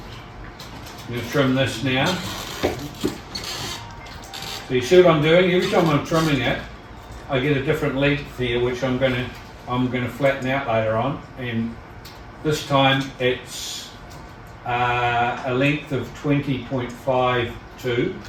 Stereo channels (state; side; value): identical; both; correlation 1.00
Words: going to trim this now. So you see what I'm doing? Every time I'm trimming it, I get a different length here, which I'm going to flatten out later on. And this time it's a length of 20.52,